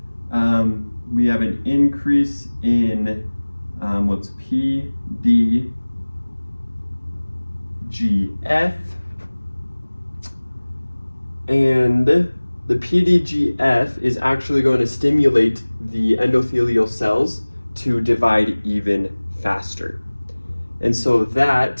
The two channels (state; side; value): inverted; both; correlation -1.00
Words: We have an increase in what's PDGF. And the PDGF is actually going to stimulate the endothelial cells to divide even faster. And so